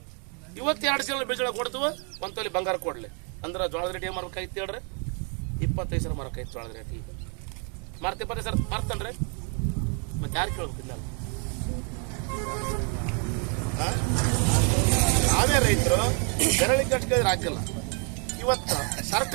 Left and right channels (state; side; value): quieter; left; 39.0 dB